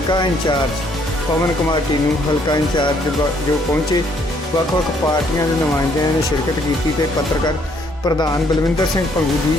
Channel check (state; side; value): normal; both; correlation 0.67